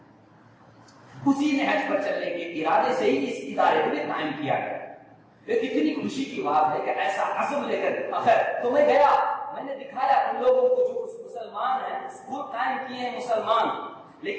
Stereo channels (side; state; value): both; identical; correlation 1.00